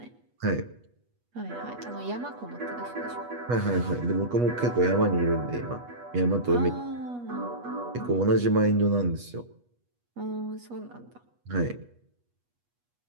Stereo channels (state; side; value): late; left; 8.3 ms